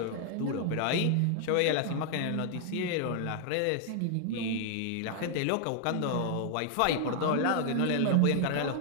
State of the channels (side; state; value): both; different; correlation 0.00